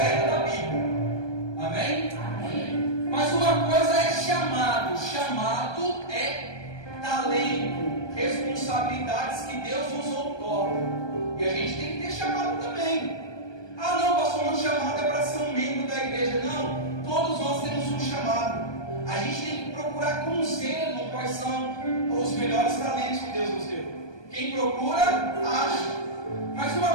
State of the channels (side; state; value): right; late; 1.2 ms